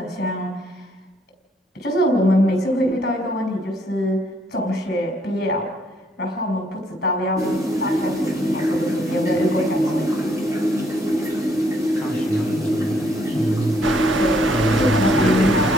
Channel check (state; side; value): normal; both; correlation 0.69